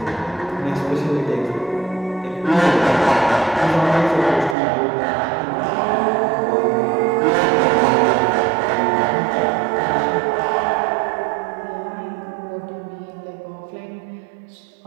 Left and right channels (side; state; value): left; drops out; at 4.5 s